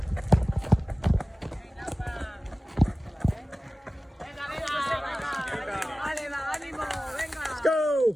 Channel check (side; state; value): both; normal; correlation 0.97